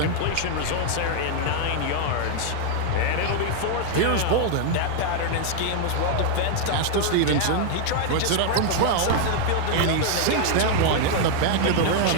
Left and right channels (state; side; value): different; both; correlation 0.00